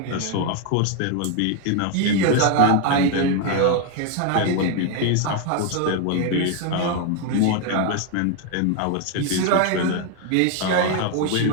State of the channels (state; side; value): different; both; correlation 0.01